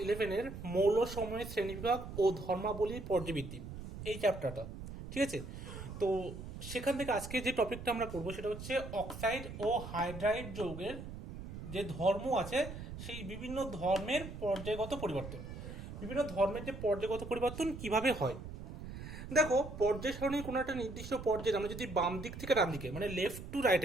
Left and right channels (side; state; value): right; noise; rumble, 10 dB below the sound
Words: 11-এর মৌল সমূহের শ্রেণীবিভাগ ও ধর্মাবলীর পর্যাবৃত্তি, এই চ্যাপ্টারটা। ঠিক আছে, তো সেখান থেকে আজকে যে টপিকটা আমরা করবো সেটা হচ্ছে অক্সাইড ও হাইড্রাইড যৌগের যে ধর্ম আছে সেই বিভিন্ন ধর্মের পর্যায়গত পরিবর্তন। বিভিন্ন ধর্মের যে পর্যায়গত পরিবর্তন কিভাবে হয়। দেখো, পর্যায় সারণীর কোনো একটা নির্দিষ্ট পর্যায়ে আমরা যদি বাম দিক থেকে ডান দিকে মানে লেফট টু